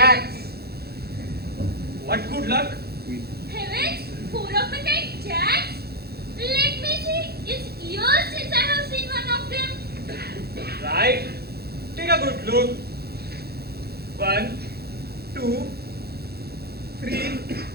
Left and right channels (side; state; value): left; late; 0.46 ms